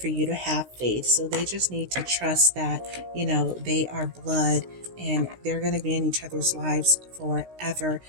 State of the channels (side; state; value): left; late; 16 ms